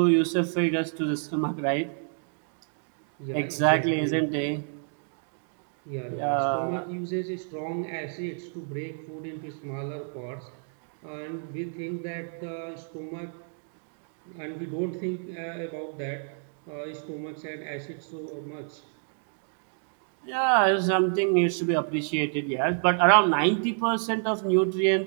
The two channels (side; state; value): left; silent; 59 dB below the other